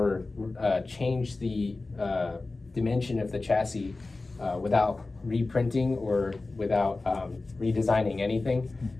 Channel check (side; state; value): right; quieter; 3.4 dB